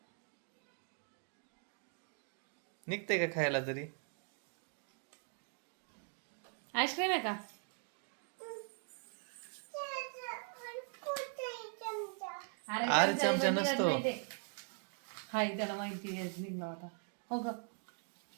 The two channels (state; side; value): silent; left; 51 dB below the other